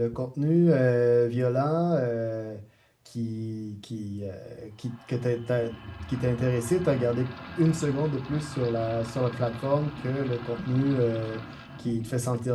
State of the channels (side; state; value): both; identical; correlation 1.00